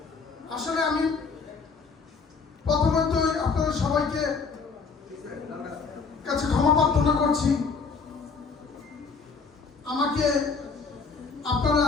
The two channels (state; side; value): quieter; right; 5.0 dB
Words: আসলে আমি প্রথমতই আপনাদের সবাইকে কাছে ক্ষমা প্রার্থনা করছি। আমাকে আপনারা